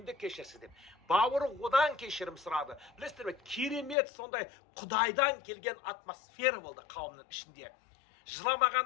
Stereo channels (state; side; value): drops out; right; at 4.0 s